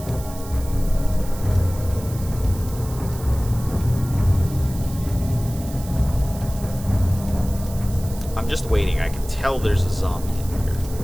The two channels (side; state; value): right; noise; hiss, 16 dB below the sound